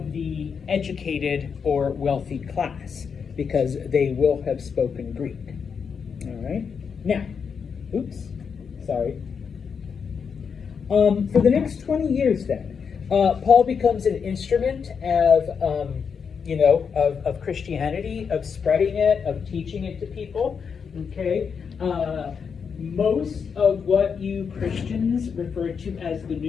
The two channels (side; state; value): right; quieter; 6.3 dB